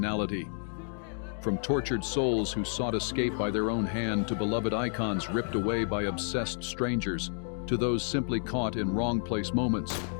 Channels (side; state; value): right; silent; 57 dB below the other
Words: From tortured souls who sought escape by their own hand to beloved icons ripped away by obsessed strangers, to those simply caught in wrong place moments,